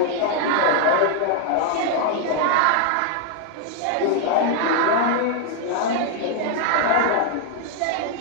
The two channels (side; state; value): both; different; correlation 0.00